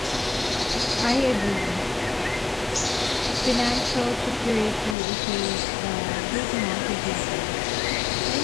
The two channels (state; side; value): drops out; right; at 5.0 s